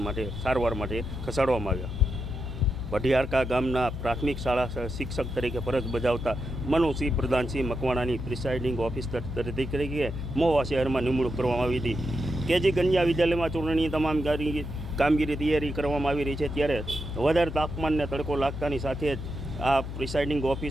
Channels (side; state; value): left; noise; hum, 7 dB below the sound